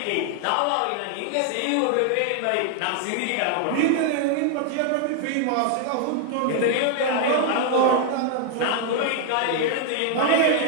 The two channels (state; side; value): different; both; correlation 0.00